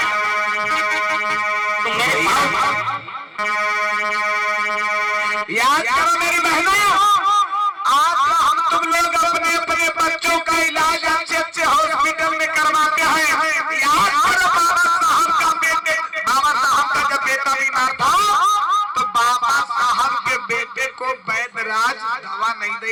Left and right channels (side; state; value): both; identical; correlation 1.00